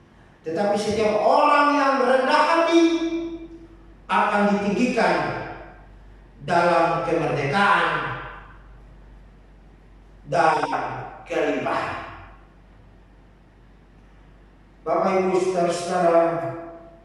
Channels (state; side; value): identical; both; correlation 1.00